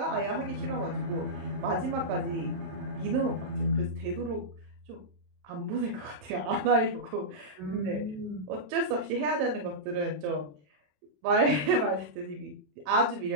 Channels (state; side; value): late; left; 27 ms